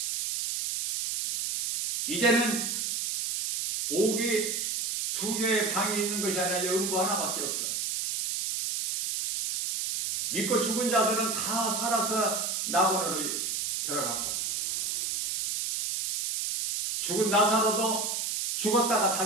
이제는 옥이 2개의 방이 있는 것이 아니라 음부 하나밖에 없어. 믿고 죽은 자들은 다 살아서 나본으로 들어갔고, 죽은 나사로도 죽었다가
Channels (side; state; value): right; noise; hiss, 1 dB below the sound